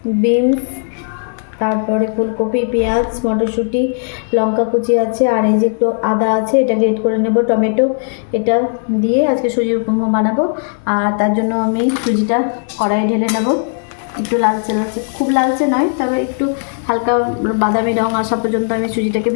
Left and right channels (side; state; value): right; silent; 69 dB below the other